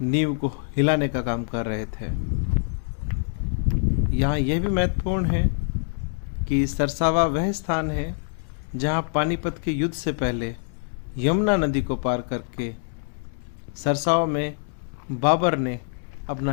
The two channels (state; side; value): silent; right; digital silence